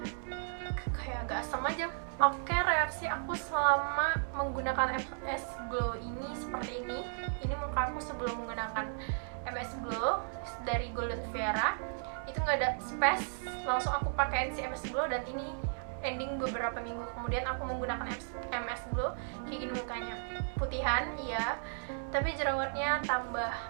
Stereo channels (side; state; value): left; silent; 55 dB below the other